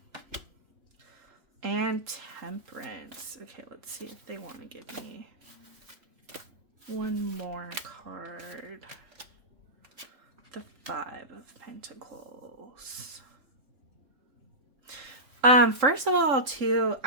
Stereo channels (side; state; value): left; late; 3.7 ms